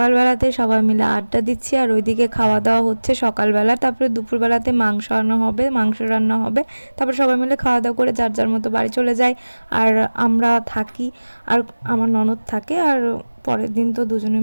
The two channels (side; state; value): both; inverted; correlation -1.00